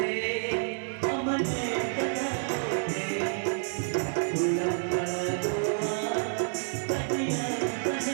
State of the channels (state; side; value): silent; left; digital silence